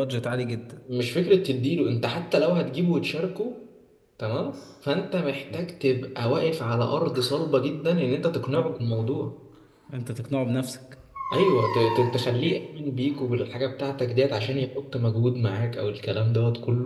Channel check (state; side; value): identical; both; correlation 1.00